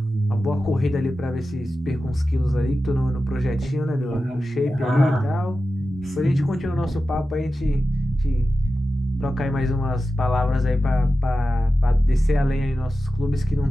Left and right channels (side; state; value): both; normal; correlation 0.93